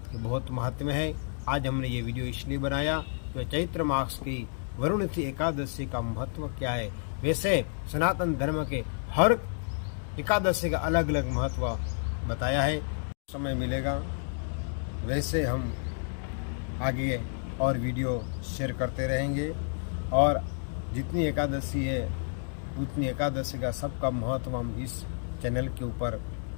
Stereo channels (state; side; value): silent; right; digital silence